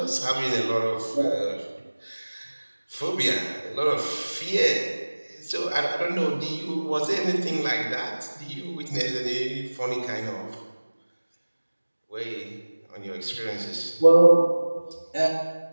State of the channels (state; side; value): inverted; both; correlation -1.00